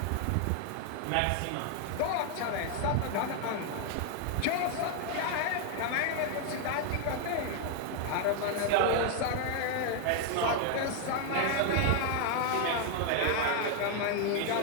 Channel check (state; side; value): different; both; correlation 0.00